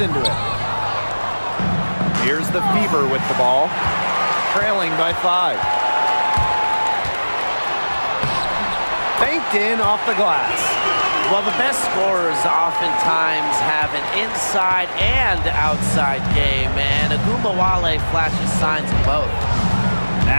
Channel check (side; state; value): both; inverted; correlation -1.00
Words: into it. Here's the Fever with the ball, trailing by 5. Banked in off the glass. Well, the best scorers oftentimes have an inside and outside game, and Agumbawale flashes signs of both.